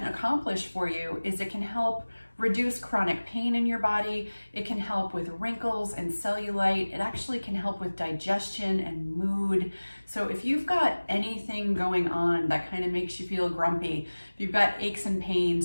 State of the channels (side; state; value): both; inverted; correlation -1.00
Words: accomplish for you is it can help reduce chronic pain in your body. It can help with wrinkles and cellulite. It actually can help with digestion and mood. So if you've got anything going on that kind of makes you feel grumpy, if you've got aches and